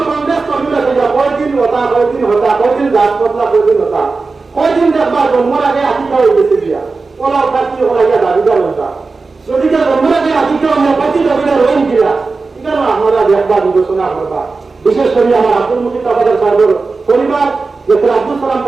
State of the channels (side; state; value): left; quieter; 4.1 dB